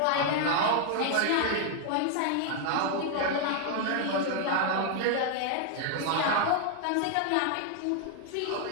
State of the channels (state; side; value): different; both; correlation 0.00